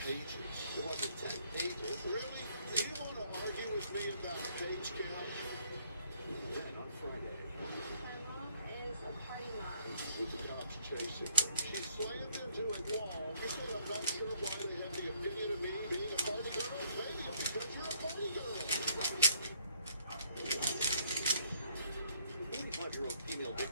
pages. It wasn't 10 pages. Really? Do you want to argue with me about the page count? Then on Friday, My mom is a party mom. With the cops chasing her, she slammed into a wall. You said I'm not sure why they have the opinion of me being a party girl. Maybe it's because you're a party girl. 41-year-old female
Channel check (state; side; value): inverted; both; correlation -0.65